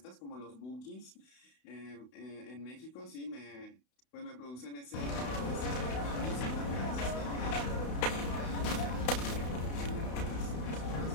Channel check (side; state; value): right; late; 32 ms